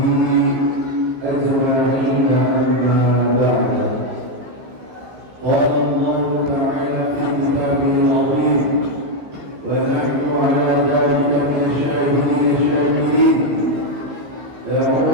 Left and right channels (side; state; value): left; late; 15 ms